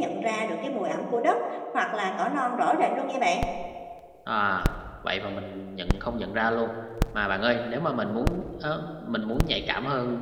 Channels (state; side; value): identical; both; correlation 1.00